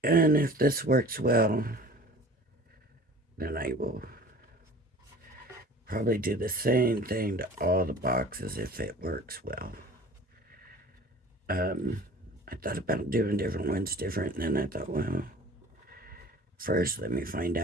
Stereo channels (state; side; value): normal; both; correlation 0.44